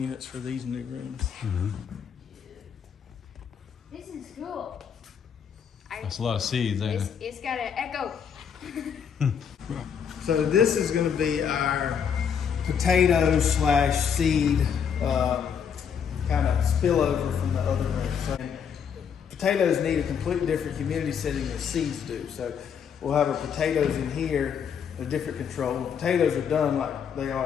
for these new rooms. This is cool. That's a lot of seeds, ain't it? It's got an echo. So this is going to be our potato / seed kind of spillover from the other room. So potatoes need a completely different humidity setting than seeds do. So we'll have our potatoes in here, a different control. When potatoes are done like they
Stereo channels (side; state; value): right; quieter; 7.4 dB